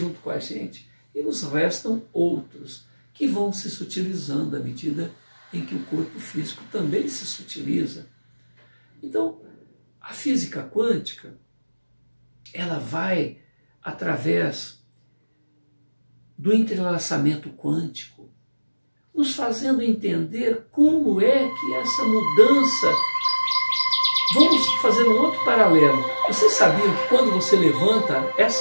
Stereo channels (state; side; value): inverted; both; correlation -1.00